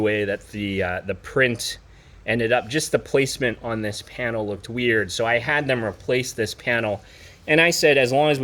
way that the print ended up. Just the placement on this panel looked weird, so I had them replace this panel. And I said as long as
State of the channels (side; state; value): both; identical; correlation 1.00